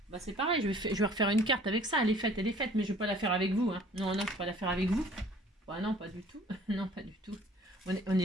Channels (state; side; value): normal; both; correlation 0.54